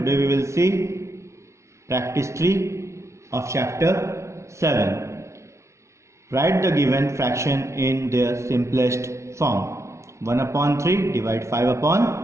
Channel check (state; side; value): late; left; 0.14 ms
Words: we will see practice 3 of chapter 7. Write the given fraction in their simplest form. 1 upon 3 divide 5